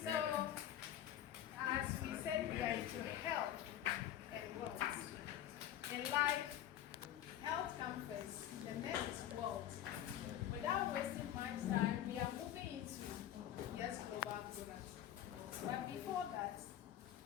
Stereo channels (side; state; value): right; quieter; 11.4 dB